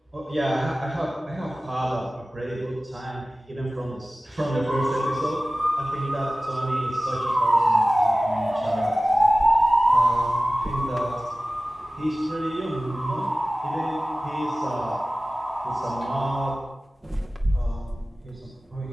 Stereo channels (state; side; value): normal; both; correlation 0.97